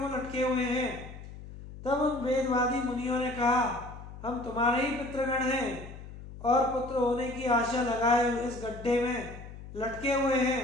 लटके हुए हैं? तब उन वेदवादी मुनियों ने कहा, हम तुम्हारे ही पुत्रगण हैं और पुत्र होने की आशा लगाए इस गड्ढे में लटके हुए हैं।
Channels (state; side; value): noise; left; hum, 14 dB below the sound